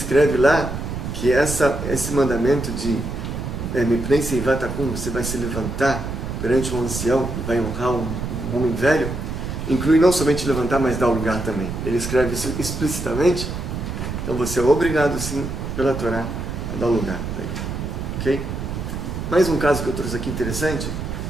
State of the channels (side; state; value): right; noise; rumble, 5 dB below the sound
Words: lá que esse mandamento de Mipnei seivatakum, você vai se levantar perante um ancião, vai honrar um homem velho, inclui não somente levantar, mas dar o lugar também. Ele escreve isso explicitamente. Então você é obrigado, sim, pela Torá, a dar o lugar. Ok? Mais um caso que eu trouxe aqui interessante,